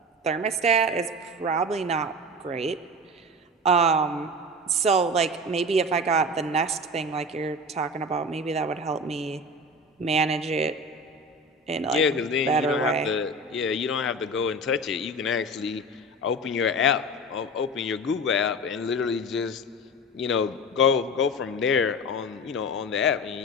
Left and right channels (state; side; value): normal; both; correlation 0.31